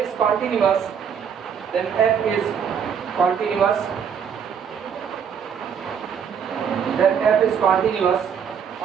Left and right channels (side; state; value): left; quieter; 7.4 dB